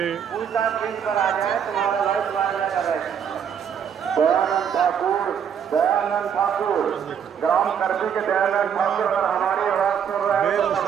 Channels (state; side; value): quieter; left; 8.0 dB